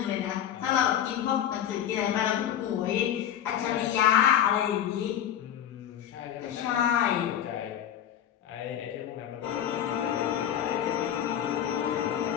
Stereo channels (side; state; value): right; quieter; 10.2 dB